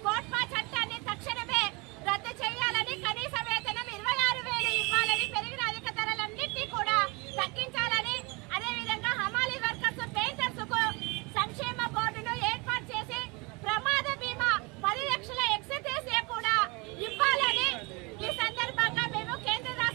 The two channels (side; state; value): left; quieter; 27.8 dB